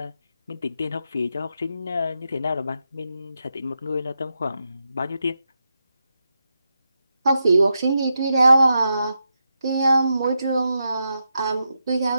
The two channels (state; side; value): inverted; both; correlation -0.86